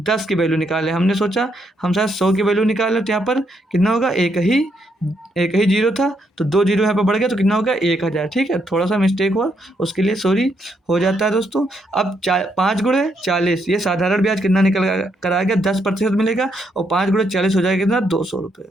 10 की वैल्यू निकाले हमने, सोचा हम शायद 100 की वैल्यू निकालें, तो यहाँ पर कितना होगा, एक ही जीरो था, तो 2 जीरो यहाँ पर बढ़ गया, तो कितना होगा 1000। ठीक है, थोड़ा सा मिस्टेक हुआ, उसके लिए सॉरी, हो जाता है दोस्तों। अब 5 गुणे 40, ये साधारण ब्याज कितना निकल कर आ गया, 10% मिलेगा, और 5 गुणे 40 हो जाएगा कितना, 200 रुपये।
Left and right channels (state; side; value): normal; both; correlation 0.76